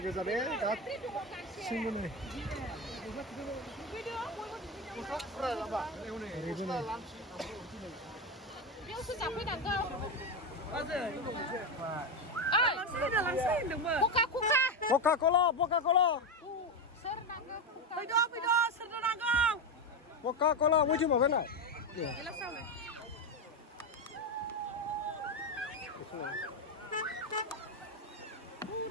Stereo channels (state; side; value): normal; both; correlation 0.12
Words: ke sana, kat sini ni. Coca-Cola. Coca-Cola, mau cuma mana?